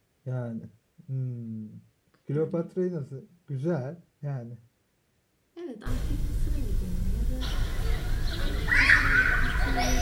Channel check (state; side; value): identical; both; correlation 1.00